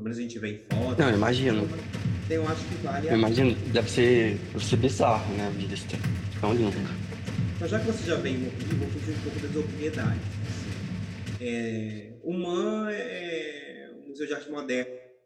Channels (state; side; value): identical; both; correlation 1.00